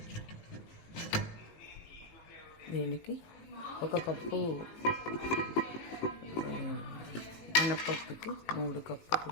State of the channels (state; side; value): late; right; 18 ms